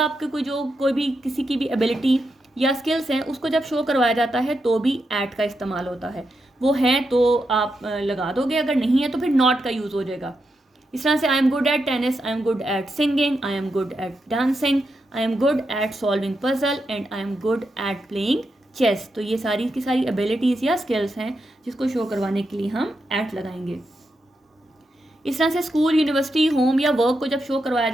कोई भी किसी की भी एबिलिटी या स्किल्स हैं उसको जब शो करवाया जाता है तो भी एट का इस्तेमाल होता है। वो हैं तो आप लगा दोगे, अगर नहीं है तो फिर नॉट का यूज़ हो जाएगा। इस तरह से I am good at tennis, I am good at singing, I am good at dancing, I am good at solving puzzle and I am good at playing chess. तो ये सारी की सारी एबिलिटीज़ या स्किल्स हैं जिसको शो करवाने के लिए हम एट लगाएंगे। इस तरह से स्कूल, यूनिवर्सिटी, होम या वर्क को जब शो करवाया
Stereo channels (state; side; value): normal; both; correlation 0.85